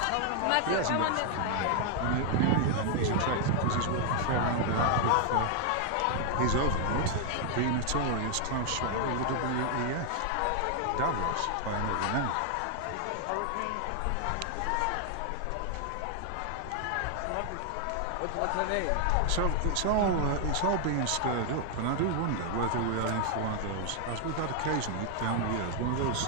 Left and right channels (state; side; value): different; both; correlation 0.00